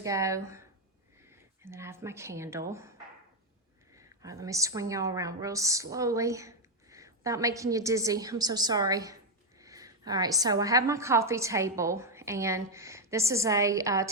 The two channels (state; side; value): normal; both; correlation 0.03